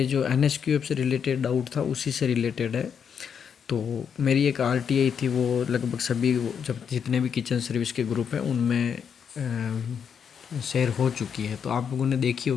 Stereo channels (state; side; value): quieter; right; 7.3 dB